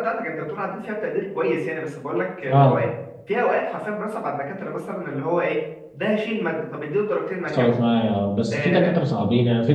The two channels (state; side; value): identical; both; correlation 1.00